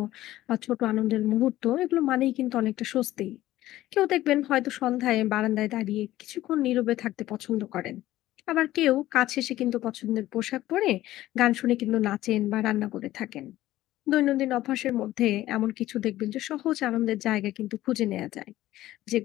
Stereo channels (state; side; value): quieter; right; 15.1 dB